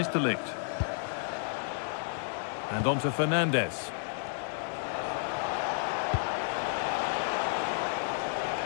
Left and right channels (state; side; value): silent; right; digital silence